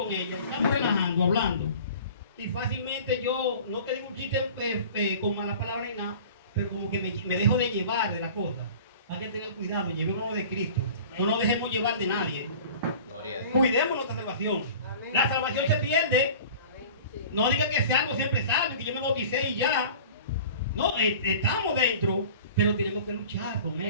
ella, estamos relajando, hablando. Y fácilmente yo, no que digo un chiste con malas palabras ni nada, pero como que me dejo de llevar de las cosas. Hay que tener cuidado, llevémonos de Cristo. No nos dejemos llevar de nadie. Cuidemos nuestra salvación. La salvación se pierde. No diga que sea algo siempre salvo, que yo me bauticé y ya. No, estamos dentro, pero tenemos que luchar con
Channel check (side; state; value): both; inverted; correlation -0.42